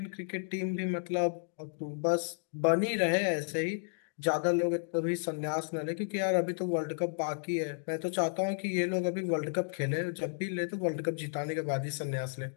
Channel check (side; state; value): right; silent; digital silence